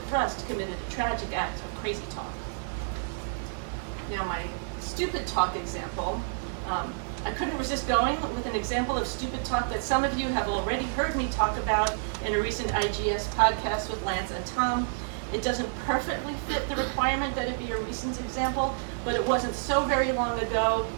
Rust committed a tragic act of crazy talk. Now, my stupid talk example, I couldn't resist going with an example of stupid talk that some of you have already heard me talk about in a recent IGS podcast with Lance and Tom. It doesn't perfectly fit the requirement that it be a recent example, but it wasn't so very long ago.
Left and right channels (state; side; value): silent; left; digital silence